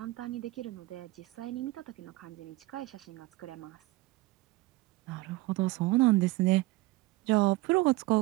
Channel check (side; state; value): left; quieter; 19.8 dB